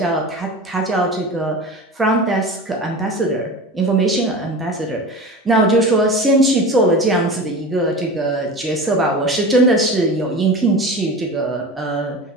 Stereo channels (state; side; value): normal; both; correlation 0.31